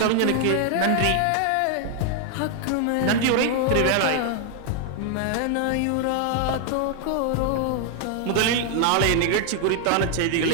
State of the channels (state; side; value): different; both; correlation 0.00